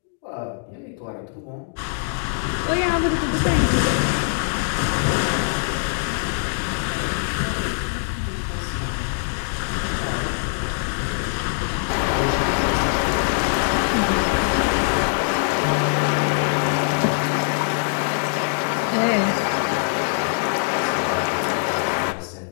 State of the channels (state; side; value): silent; right; digital silence